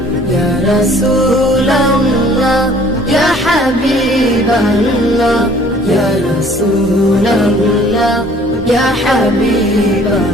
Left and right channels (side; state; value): both; normal; correlation 0.55